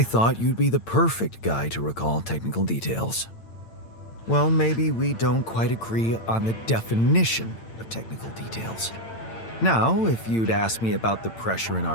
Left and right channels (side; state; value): right; late; 8.9 ms